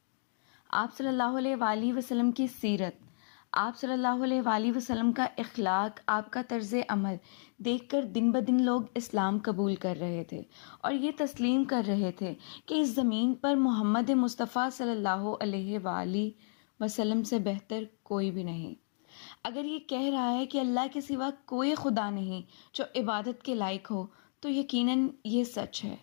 آپ صلی اللہ علیہ وآلہ وسلم کی سیرت، آپ صلی اللہ علیہ وآلہ وسلم کا اخلاق، آپ کا طرز عمل دیکھ کر دن بدن لوگ اسلام قبول کر رہے تھے اور یہ تسلیم کر رہے تھے کہ اس زمین پر محمد مصطفیٰ صلی اللہ علیہ وآلہ وسلم سے بہتر کوئی بھی نہیں۔ اگر یہ کہہ رہا ہے کہ اللہ کے سوا کوئی خدا نہیں جو عبادت کے لائق ہو تو یقیناً یہ سچ ہے۔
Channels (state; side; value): silent; right; digital silence